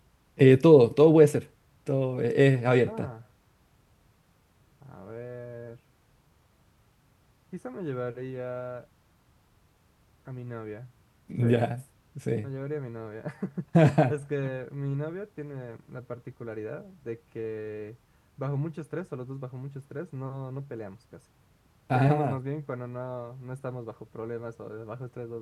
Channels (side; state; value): both; identical; correlation 1.00